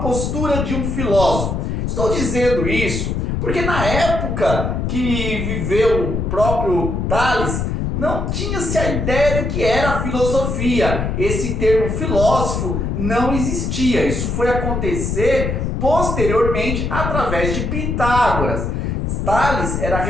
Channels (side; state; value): left; noise; rumble, 1 dB below the sound